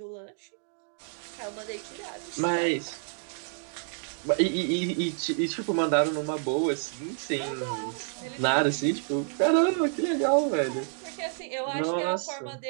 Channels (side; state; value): left; silent; 59 dB below the other